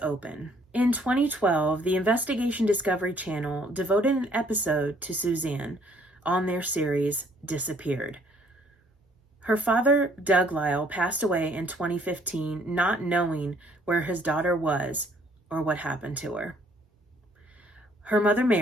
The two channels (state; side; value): normal; both; correlation 0.62